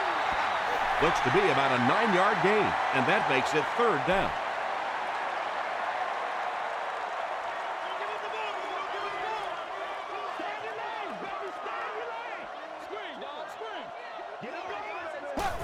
Looks to be about a 9-yard gain, and that makes it 3rd down.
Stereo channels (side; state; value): both; identical; correlation 1.00